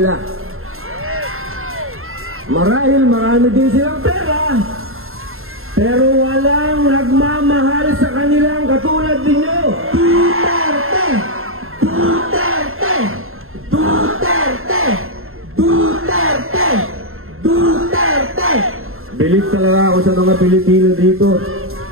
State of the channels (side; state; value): left; late; 0.61 ms